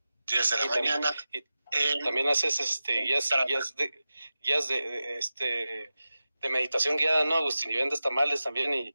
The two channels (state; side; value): inverted; both; correlation -0.94